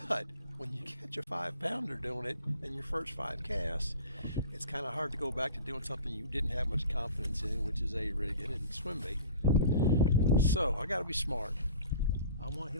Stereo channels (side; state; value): both; inverted; correlation -0.41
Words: but when you catch a 5-pounder doing it in your first 5 casts, it's kind of hard to go back to doing something you didn't have much confidence in, which is A-rigging and swim baiting. So I got to be smart. I want to